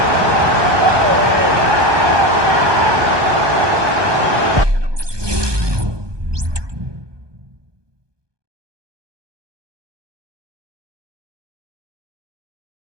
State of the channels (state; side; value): late; left; 1.2 ms